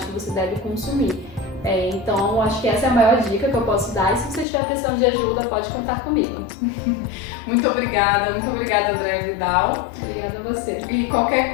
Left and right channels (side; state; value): right; drops out; at 4.5 s